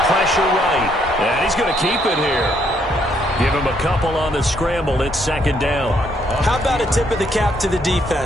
pressure right. And he's going to keep it here. Give him a couple on the scramble. It's second down. How about a tip of the cap to the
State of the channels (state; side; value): normal; both; correlation 0.71